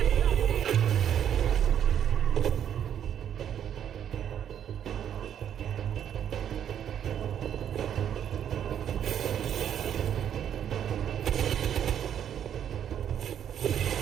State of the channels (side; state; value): left; quieter; 9.4 dB